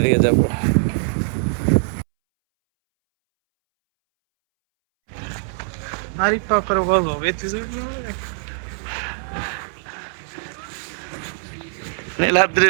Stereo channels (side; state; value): left; silent; 63 dB below the other